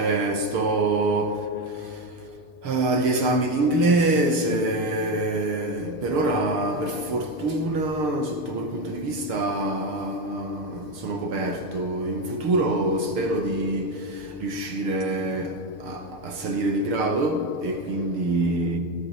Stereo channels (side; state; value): left; late; 6.7 ms